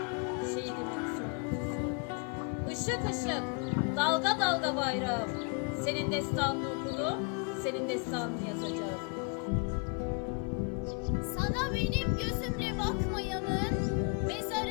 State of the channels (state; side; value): quieter; right; 35.8 dB